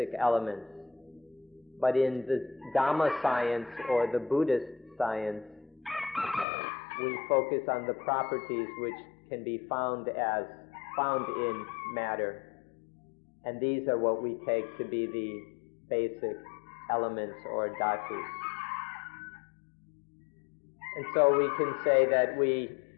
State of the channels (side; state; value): right; drops out; at 6.5 s